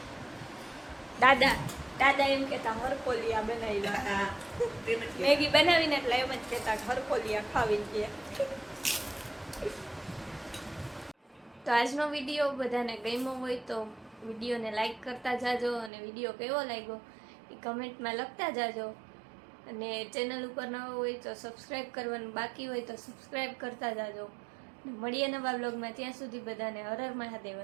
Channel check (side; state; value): left; drops out; at 15.9 s